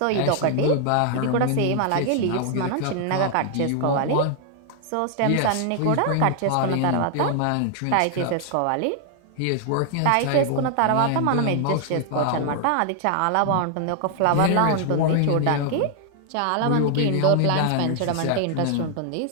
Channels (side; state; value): both; different; correlation 0.00